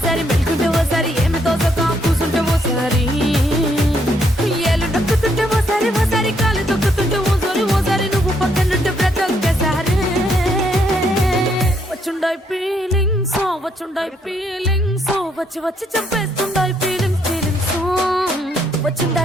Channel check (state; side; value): normal; both; correlation 0.73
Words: మెలుకుంటే ఓసారి ఏమి తోసక కూసుంటే ఓసారి ఏళ్ళు నొక్కుతుంటే ఓసారి ఓసారి కాలు తొక్కుతుంటే ఓసారి నువ్వు పక్కనుంటే బ్రతొక్కసారి వచ్చుండాయి ఫీలింగ్స్ వచ్చి వచ్చి చంపేస్తుండాయి ఫీలింగ్స్